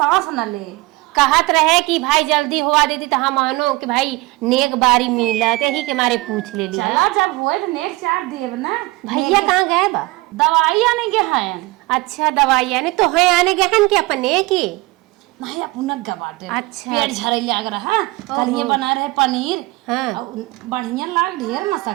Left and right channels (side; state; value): left; quieter; 21.8 dB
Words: न ले कहत रहे कि भाई जल्दी हुआ देती तो हम मानो कि भाई नेक बारी मिलत यही के मारे पूछ ले लिया। चला जब हुए तो नेक चार देव ना भैया कहाँ गए बा दवाई आने के हैं। अच्छा दवाई आने तो है आने गए हैं कि अपने की नहीं अपना गवाटे अच्छा पेट झरे लाग रहा कल ये बना रहे पनीर हाँ बढ़िया लाग ढेर